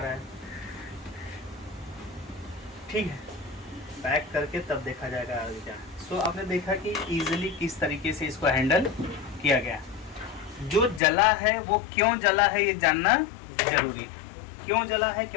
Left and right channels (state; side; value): drops out; right; at 11.0 s